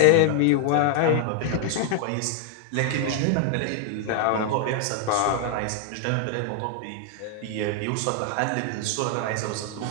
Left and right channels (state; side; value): different; both; correlation 0.00